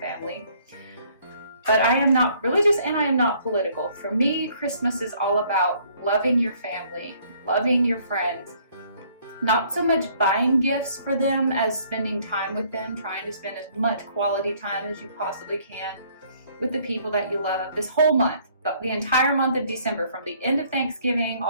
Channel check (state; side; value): inverted; both; correlation -0.62